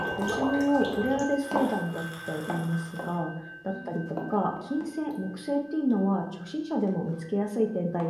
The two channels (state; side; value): identical; both; correlation 1.00